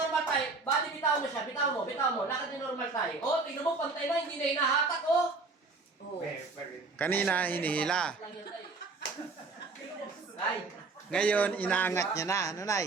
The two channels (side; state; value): left; quieter; 3.9 dB